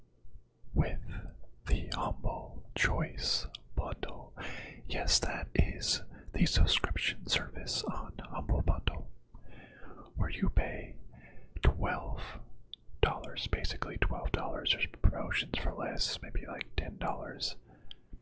with the Humble Choice Bundle. Yes, that is the subscription service on Humble Bundle, where you pay $12, basically $12. There's promotions for less, maybe like $10.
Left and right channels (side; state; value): both; identical; correlation 1.00